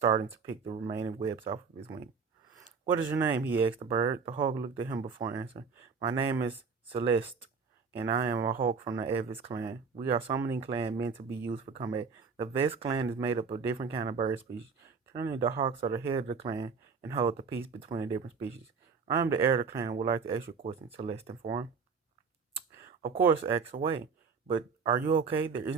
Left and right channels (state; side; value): quieter; left; 5.4 dB